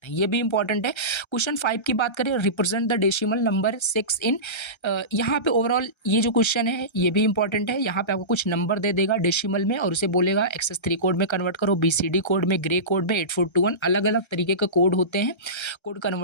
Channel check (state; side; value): late; right; 1.3 ms